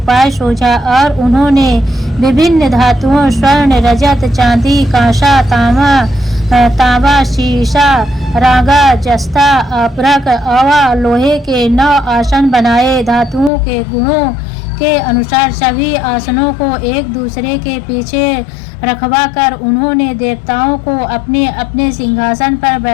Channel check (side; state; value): right; drops out; at 13.5 s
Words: सूझा और उन्होंने विभिन्न धातुओं स्वर्ण, रजत, चांदी, कांसा, तांबा, शीशा, रागा, जस्ता, अपरक, अवा, लोहे के 9 आसन बनाए। धातुओं के गुणों के अनुसार सभी आसनों को एक दूसरे के पीछे रखवा कर उन्होंने देवताओं को अपने अपने सिंहासन पर